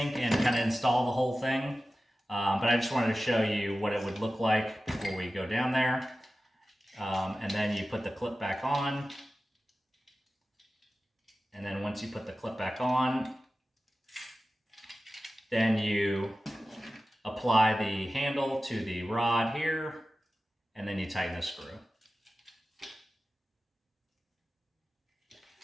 and kind of install the whole thing. But I just wanted to show you what it would look like before we go down there. And then you put the clip back on. And then once you put the clip back on, then you apply the handle to the rod here, and then you tighten the screw.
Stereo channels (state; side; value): normal; both; correlation 0.95